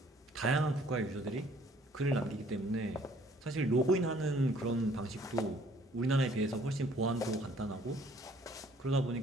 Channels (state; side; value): normal; both; correlation 0.59